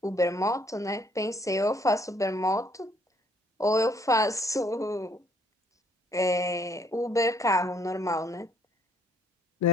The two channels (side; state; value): both; normal; correlation 0.64